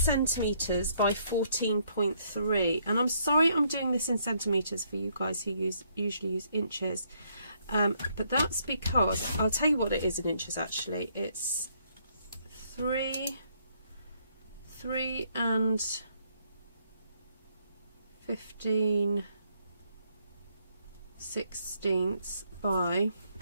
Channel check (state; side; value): inverted; both; correlation -0.70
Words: by 14.3. And I'm sorry I'm doing this in centimetres for you guys who usually use inches. But that's because, I'll tell you what it is in inches actually. It's 3 and 15/16 by,